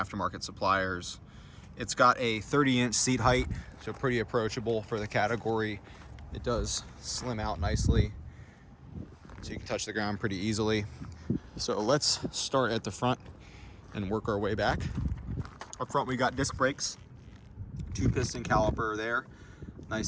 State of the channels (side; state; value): both; identical; correlation 1.00